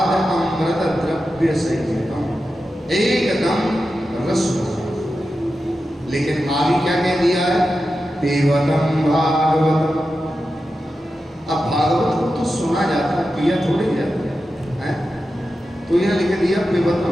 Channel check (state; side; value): normal; both; correlation 0.91